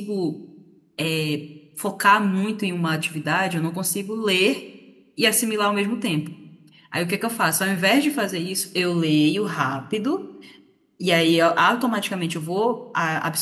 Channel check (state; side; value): identical; both; correlation 1.00